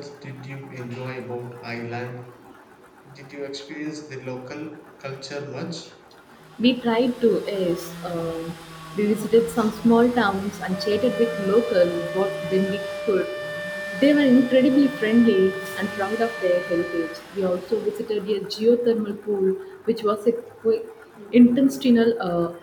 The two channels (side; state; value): both; identical; correlation 1.00